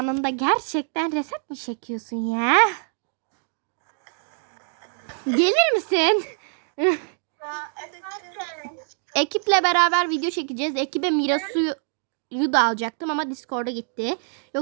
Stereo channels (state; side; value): silent; left; digital silence